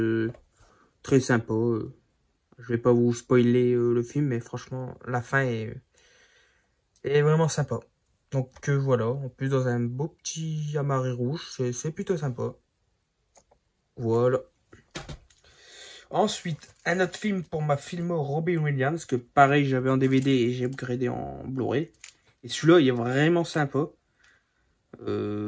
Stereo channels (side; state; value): both; identical; correlation 1.00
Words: très sympa. Je vais pas vous spoiler le film, mais franchement, la fin est vraiment sympa. Donc voilà, en plus dans un beau petit amarré rouge, c'est plutôt sympa. Voilà. Ensuite, un autre film pour ma filmo Robin Williams, que pareil j'avais en DVD et j'ai upgradé en Blu-ray. Et celui-là, il est vraiment sympa.